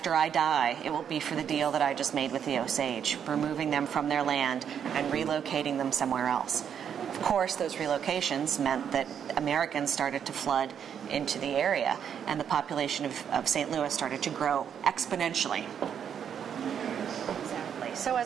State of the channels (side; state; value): left; quieter; 8.2 dB